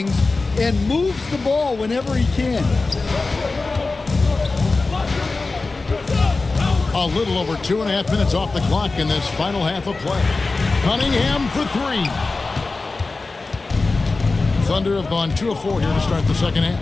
and moves the ball whenever he can. A little over 2.5 minutes off the clock in this final half of play. Cunningham for 3. Thunder have gone 2 of 4 here to start the second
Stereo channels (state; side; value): quieter; right; 3.7 dB